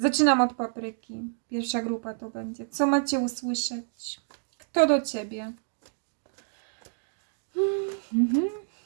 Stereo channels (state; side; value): silent; left; digital silence